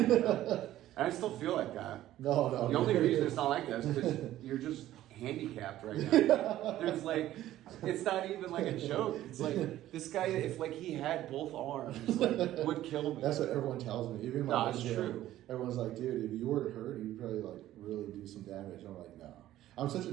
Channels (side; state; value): left; quieter; 13.8 dB